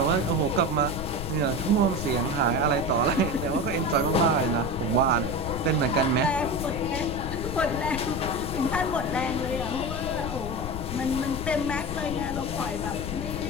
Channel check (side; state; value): left; noise; rumble, 6 dB below the sound